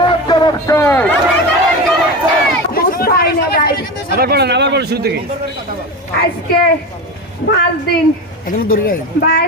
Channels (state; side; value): normal; both; correlation 0.24